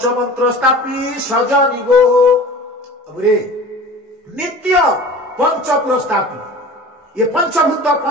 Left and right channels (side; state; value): both; normal; correlation 0.40